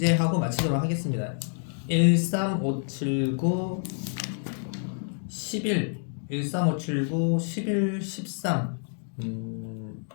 하고 마치도록 하겠습니다. 1, 3, 5, 7, 9, 11, 1, 3, 5, 7, 9, 11, 13,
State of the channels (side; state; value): right; silent; digital silence